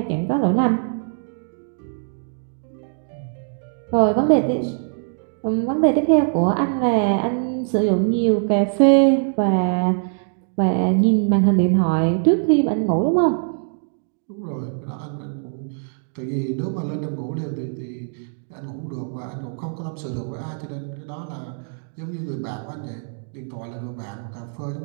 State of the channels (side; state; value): left; silent; digital silence